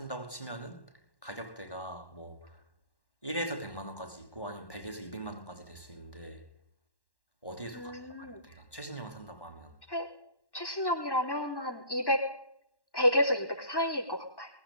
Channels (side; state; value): right; late; 1.1 ms